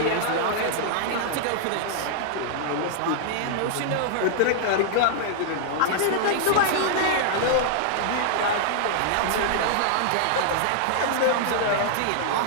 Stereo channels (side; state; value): both; different; correlation -0.01